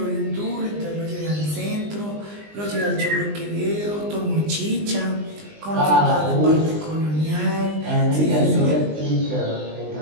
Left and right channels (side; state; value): left; late; 20 ms